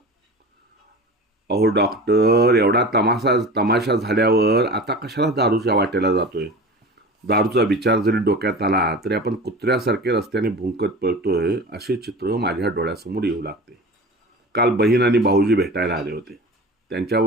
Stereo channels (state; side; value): normal; both; correlation 0.34